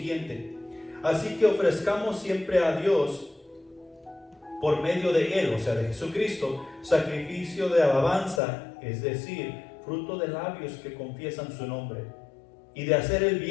así que ofrezcamos siempre a Dios por medio de Él, o sea de Jesucristo, sacrificio de alabanza, es decir, fruto de labios que confiesan su nombre, y de hacer el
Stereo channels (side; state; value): right; drops out; at 8.4 s